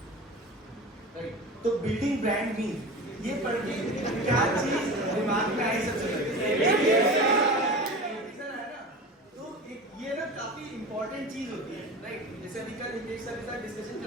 right. तो बिल्डिंग ब्रांड मीन ये पढ़ के क्या चीज दिमाग में आई सबसे पहले तो ये ना काफी इंपॉर्टेंट चीज होती है, राइट। जैसे अभी कल हितेश सर के साथ डिस्कशन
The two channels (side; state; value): both; normal; correlation 0.32